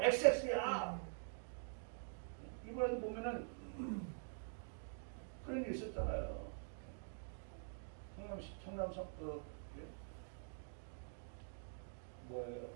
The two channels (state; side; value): silent; left; digital silence